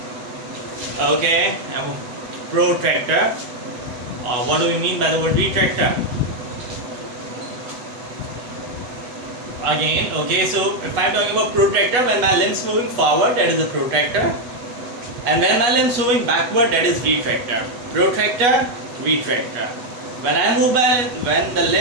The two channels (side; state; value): left; late; 8.0 ms